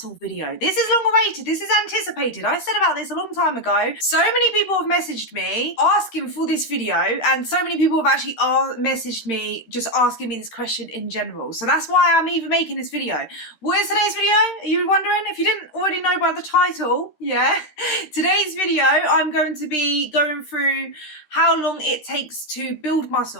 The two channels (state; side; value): late; right; 13 ms